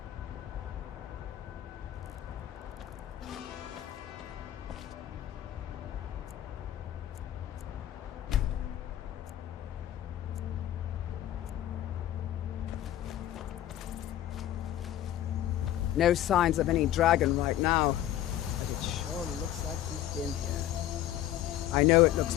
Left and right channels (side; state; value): right; quieter; 12.5 dB